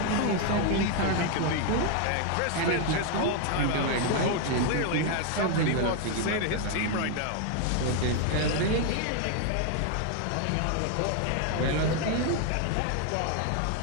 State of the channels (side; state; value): both; different; correlation 0.00